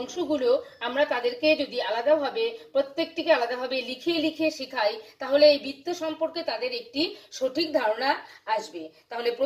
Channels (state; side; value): identical; both; correlation 1.00